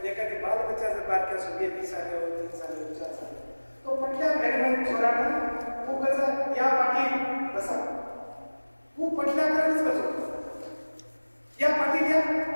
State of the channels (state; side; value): inverted; both; correlation -1.00